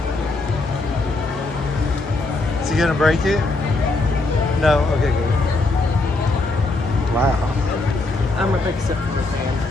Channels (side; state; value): right; quieter; 3.1 dB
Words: Is he gonna break it? No? Okay, good. Wow. I'm a big Simplor fan.